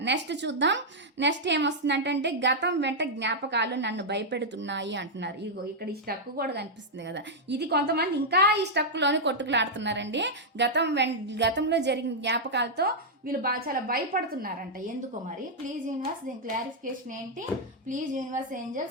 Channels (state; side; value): normal; both; correlation -0.04